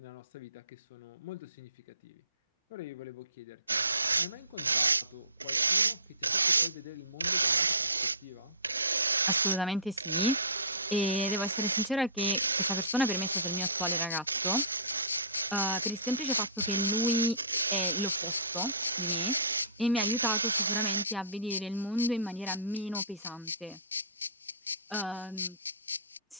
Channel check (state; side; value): inverted; both; correlation -0.33